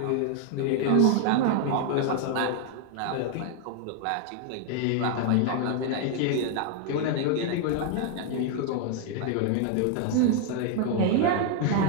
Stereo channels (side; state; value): both; different; correlation 0.00